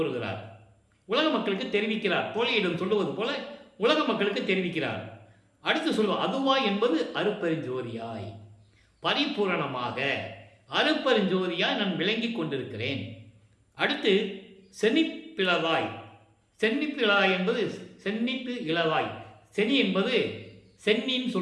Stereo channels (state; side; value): identical; both; correlation 1.00